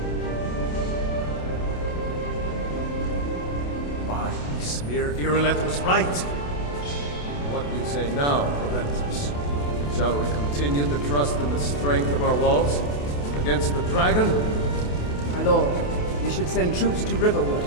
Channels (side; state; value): right; late; 28 ms